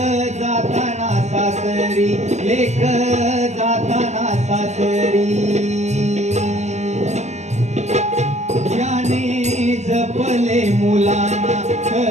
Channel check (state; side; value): late; left; 0.33 ms